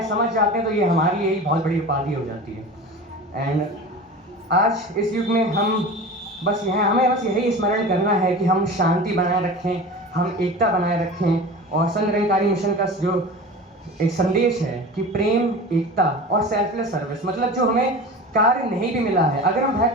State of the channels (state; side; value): normal; both; correlation 0.34